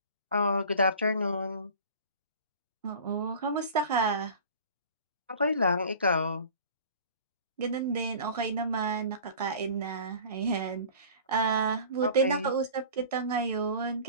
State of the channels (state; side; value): inverted; both; correlation -0.42